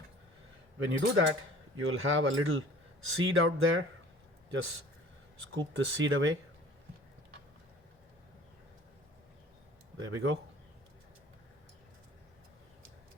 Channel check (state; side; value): normal; both; correlation 0.47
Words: When you do that, you'll have a little seed out there. Just scoop the seed away. There we go.